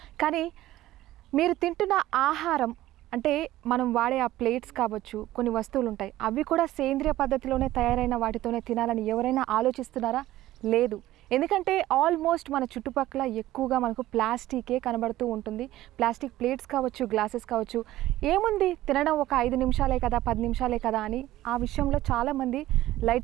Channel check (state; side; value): quieter; left; 15.2 dB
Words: కానీ మీరు తింటున్న ఆహారం అంటే మనం వాడే ఆ ప్లేట్స్ కావచ్చు, కొన్ని వస్తువులు ఉంటాయి, అవి కూడా సేంద్రియ పద్ధతిలోనే తయారైన వాటితోనే తినాలని ఎవరైనా ఆలోచిస్తున్నారా? లేదు. ఎందుకంటే ఆల్మోస్ట్ మన చుట్టుపక్కల ఎక్కువగా మనకు ప్లాస్టికే కనబడుతూ ఉంటుంది. ప్లాస్టిక్ ప్లేట్స్ కావచ్చు, గ్లాసెస్ కావచ్చు, ఏముంది తినడం ఒక 5 నిమిషాలే కదా, 10 నిమిషాలే కదా అని ఆ విషయంలో చాలామంది